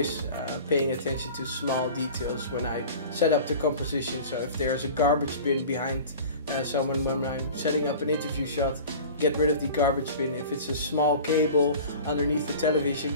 paying attention to small details when I set up the composition. So if there's a garbage bin behind someone when I'm setting up an interview shot, get rid of the garbage bin. If it's a small cable underneath the television,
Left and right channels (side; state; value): both; inverted; correlation -0.39